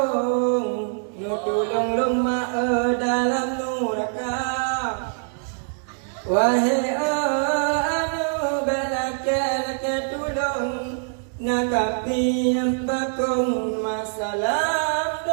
nu tulung lemak dalam neraka. Wahai anu balaka tulung, nagapi bakung masalah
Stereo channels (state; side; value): silent; left; digital silence